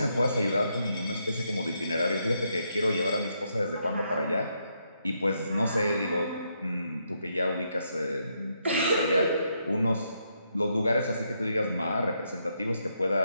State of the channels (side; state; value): both; inverted; correlation -0.78